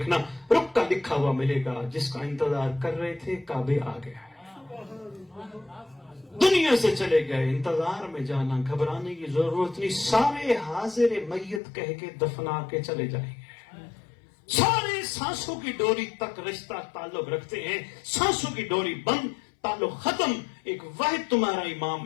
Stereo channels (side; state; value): right; drops out; at 11.6 s